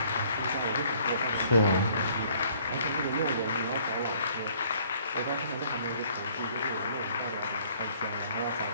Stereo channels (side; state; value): both; inverted; correlation -0.60